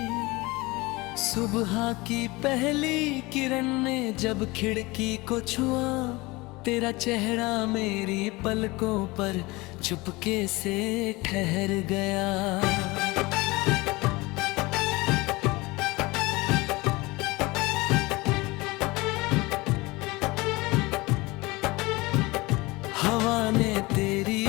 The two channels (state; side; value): quieter; right; 22.7 dB